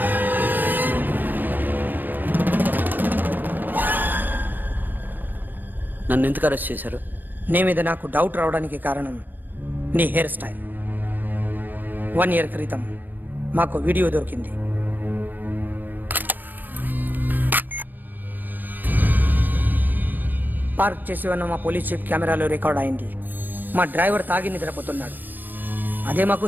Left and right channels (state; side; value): late; left; 0.091 ms